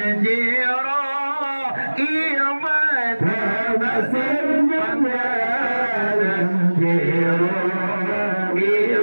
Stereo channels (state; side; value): inverted; both; correlation -1.00